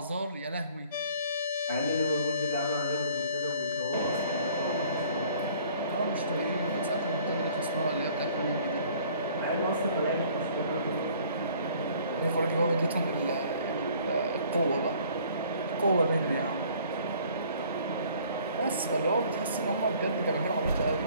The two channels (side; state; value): both; inverted; correlation -0.55